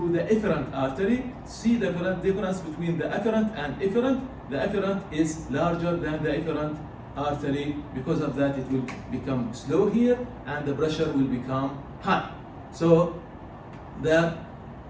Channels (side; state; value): both; identical; correlation 1.00